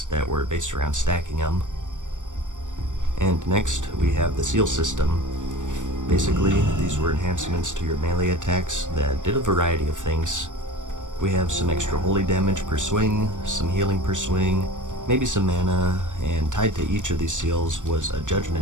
that were based around stacking them. And next, we have the seal system. Basically, these were enhancements to your melee attacks that did a variety of things. We have some extra holy damage per swing, some healing per swing, maybe some mana, and tied to each of these seals was a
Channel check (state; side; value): late; left; 0.86 ms